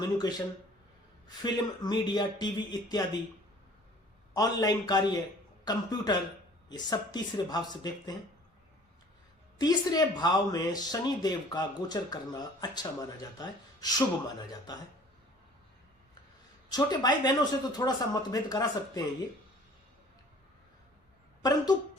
फिल्म, मीडिया, टीवी इत्यादि, ऑनलाइन कार्य, कंप्यूटर, ये सब तीसरे भाव से देखते हैं। तीसरे भाव में शनि देव का गोचर करना अच्छा माना जाता है, शुभ माना जाता है। छोटे भाई बहनों से तो थोड़ा सा मतभेद करा सकते हैं ये, परंतु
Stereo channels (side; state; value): both; normal; correlation 0.50